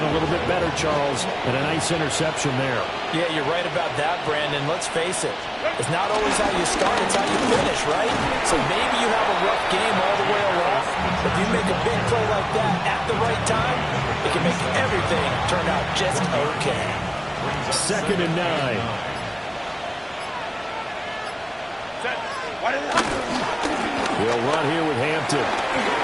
a little bit better, Charles, and a nice interception there. Yeah, you're right about that, Brandon. Let's face it. It's not always how you start, it's how you finish, right? So maybe you have a rough game all the way along. If you make a big play like that at the right time, it can make everything turn out just okay. 2nd and 9. They'll run here with Hampton.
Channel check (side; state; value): both; identical; correlation 1.00